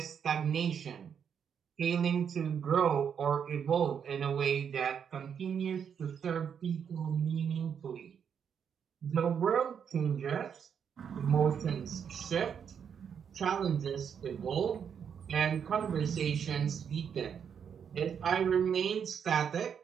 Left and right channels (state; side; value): quieter; left; 7.6 dB